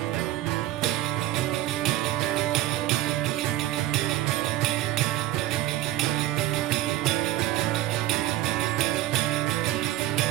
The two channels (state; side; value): quieter; left; 14.9 dB